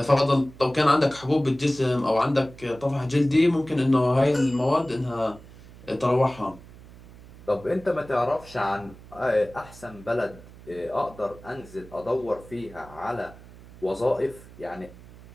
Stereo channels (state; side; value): noise; right; hum, 20 dB below the sound